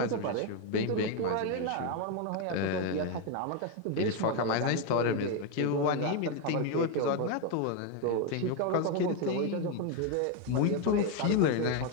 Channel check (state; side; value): different; both; correlation 0.02